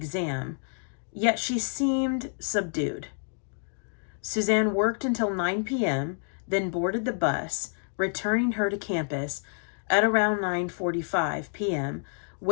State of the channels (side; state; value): right; silent; 57 dB below the other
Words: yet she seemed subdued. Suzanne worked until 9 p.m., then boarded the bus, returning her to campus at around 9:45 p.m.,